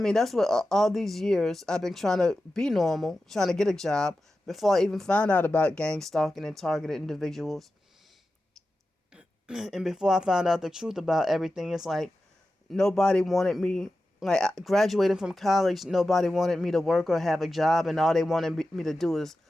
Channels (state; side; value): normal; both; correlation 0.93